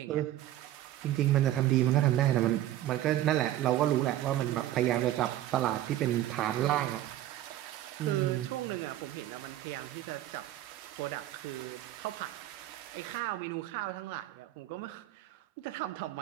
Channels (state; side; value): quieter; left; 13.6 dB